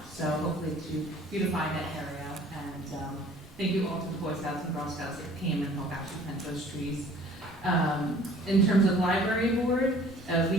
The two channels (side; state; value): both; normal; correlation 0.51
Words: so hopefully to beautify that area. And thank you all to the Boy Scouts and Girl Scouts that came and helped actually plant those trees. In terms of library board,